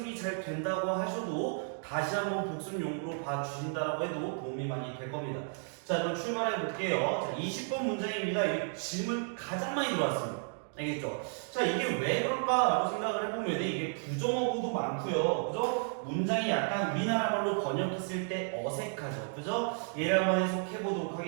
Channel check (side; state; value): left; silent; 56 dB below the other